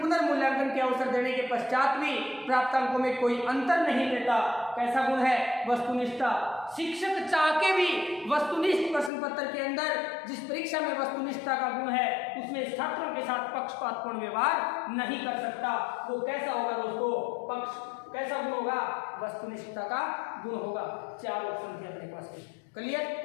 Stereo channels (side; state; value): right; drops out; at 9.1 s